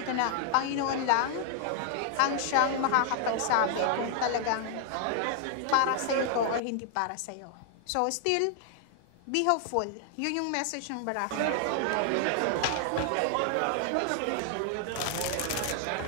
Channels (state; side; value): different; both; correlation -0.01